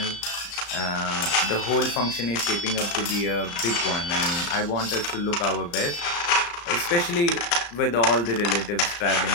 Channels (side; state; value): right; late; 35 ms